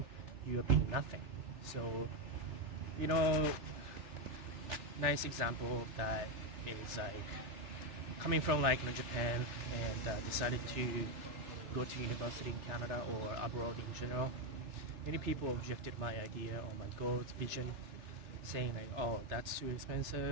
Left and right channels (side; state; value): left; late; 3.4 ms